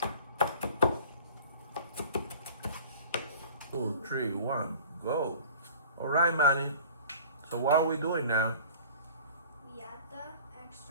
Two, three, one, go. All right, Manny. So what are we doing now? We add the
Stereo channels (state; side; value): inverted; both; correlation -0.44